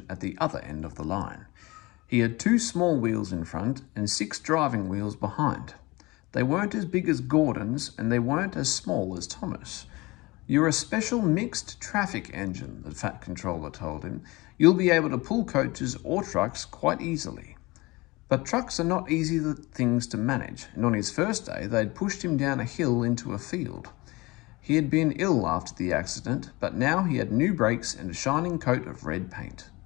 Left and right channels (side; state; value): right; quieter; 22.4 dB